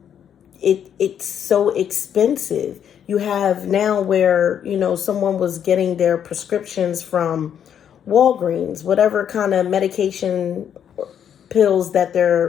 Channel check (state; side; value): quieter; right; 8.9 dB